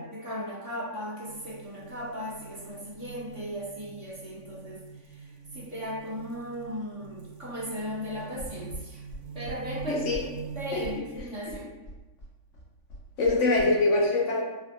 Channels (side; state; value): right; late; 3.5 ms